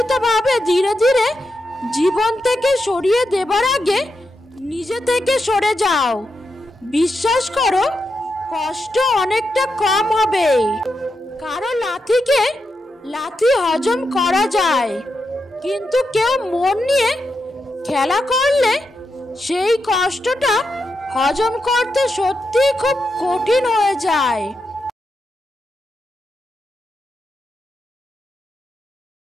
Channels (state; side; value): normal; both; correlation 0.86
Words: ধীরে ধীরে জীবন থেকে সরিয়ে দেবার আগে নিজে থেকে সরে যাও। বিশ্বাস করো, কষ্ট অনেকটা কম হবে। কারো লাথিকে লাথি হজম করা যায়, কিন্তু কেউ মন নিয়ে খেলা করলে সেই কষ্টটা হজম করতে সত্যিই খুব কঠিন হয়ে যায়।